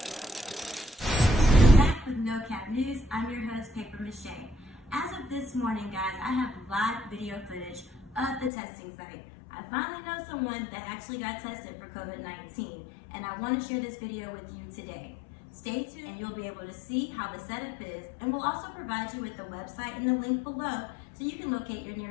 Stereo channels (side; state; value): right; drops out; at 8.5 s